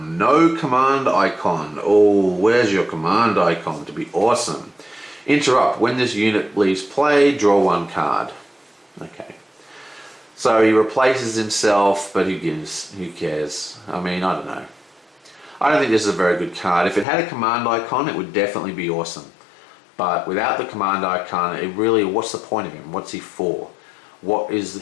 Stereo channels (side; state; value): right; drops out; at 17.1 s